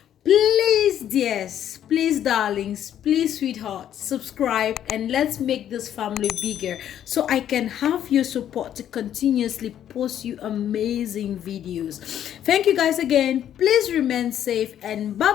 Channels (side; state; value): right; quieter; 10.5 dB